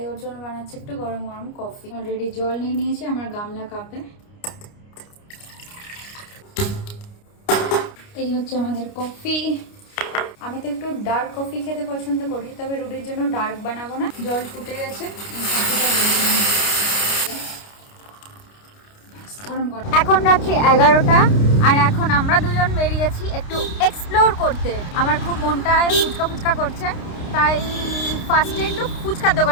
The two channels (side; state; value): right; late; 29 ms